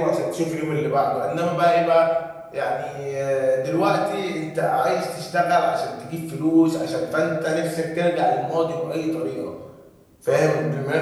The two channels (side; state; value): both; identical; correlation 1.00